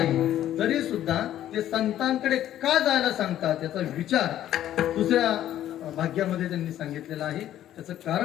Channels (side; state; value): right; quieter; 12.1 dB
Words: तरी सुद्धा ते संतांकडे का जायला सांगतात त्याचा विचार दुसऱ्या भाग्यामध्ये त्यांनी सांगितलेला आहे. त्याचं